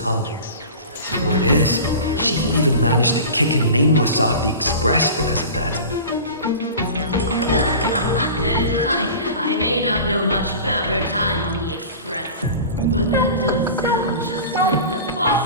Word is, she even managed to kick a nameless off the Express because of that. I may not know much about her time on the Express, but that does sound just like the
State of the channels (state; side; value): inverted; both; correlation -0.35